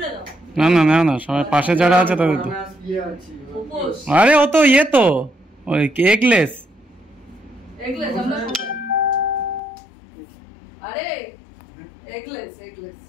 না না না না, সবাই পাশে যারা আছে তাদের তো। আরে ও তো ইয়ে তো ওই এগলেস। আরে এগলেস এগলেস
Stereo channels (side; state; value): right; drops out; at 9.6 s